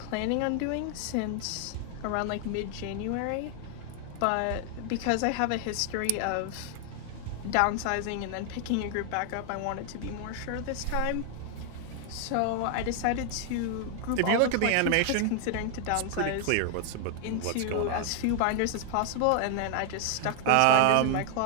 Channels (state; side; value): different; both; correlation 0.00